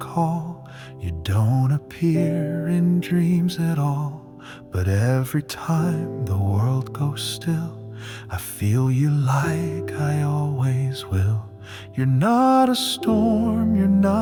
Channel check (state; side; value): identical; both; correlation 1.00